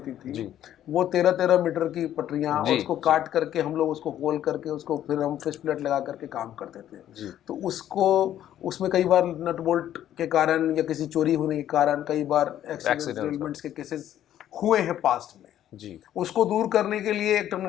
थी, वो 13-13 मीटर की पटरियाँ, और उसको काट करके हम लोग उसको होल करके उसको फिर हम फिश प्लेट लगा करके काम करते थे। तो उसमें कई बार नट बोल्ट के कारण या किसी चोरी होने के कारण कई बार एक्सीडेंट्स के केसेस हुए हैं पास्ट में जी। उसको दूर करने के लिए एक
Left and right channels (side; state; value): right; quieter; 11.5 dB